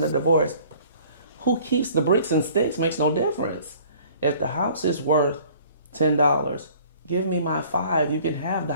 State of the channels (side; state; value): both; inverted; correlation -0.52